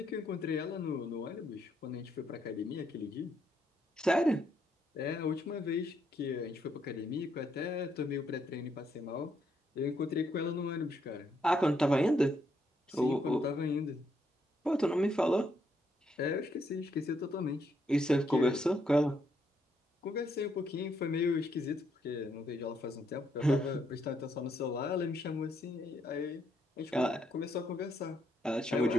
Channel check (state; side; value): normal; both; correlation 0.75